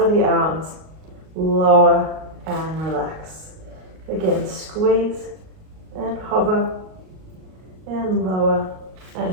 the arms, lower and relax. Again, squeeze and hover and lower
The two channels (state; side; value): late; left; 38 ms